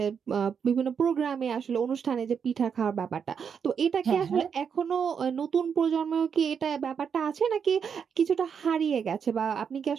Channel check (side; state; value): left; quieter; 7.0 dB